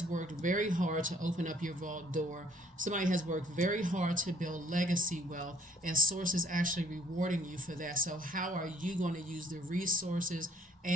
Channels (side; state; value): both; normal; correlation 0.62